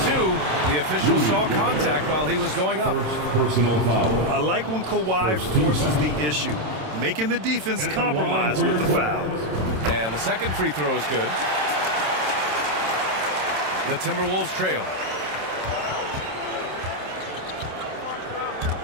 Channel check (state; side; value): late; left; 27 ms